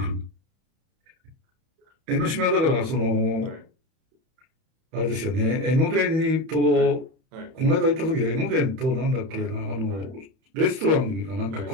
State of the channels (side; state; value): left; late; 31 ms